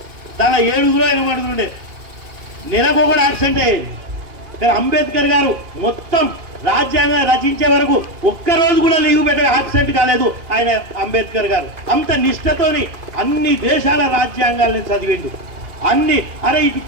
తన 7 ఆయన పడుతుండే, నెలకు కూడా యాక్సిడెంట్ అయ్యేది. కానీ అంబేద్కర్ గారు మొత్తం రాజ్యాంగం రచించే వరకు ఒక్కరోజు కూడా లీవ్ పెట్టే యాబ్సెంట్ కాలేదు ఆయన. అంబేద్కర్ గారు అంత నిష్ఠతోని అన్ని దేశాల రాజ్యాంగాలను చదివిండు. అన్ని అరే ఇటు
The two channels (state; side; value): late; left; 2.5 ms